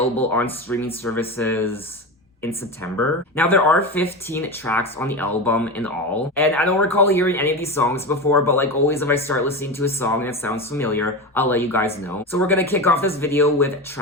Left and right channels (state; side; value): normal; both; correlation 0.22